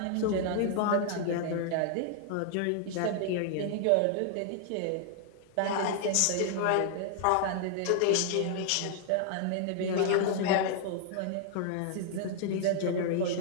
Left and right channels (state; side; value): different; both; correlation -0.01